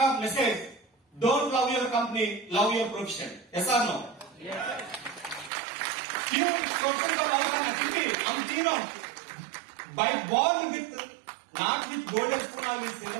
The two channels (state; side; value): drops out; left; at 5.5 s